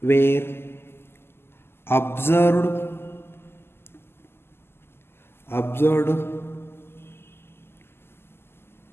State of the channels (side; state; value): right; late; 0.12 ms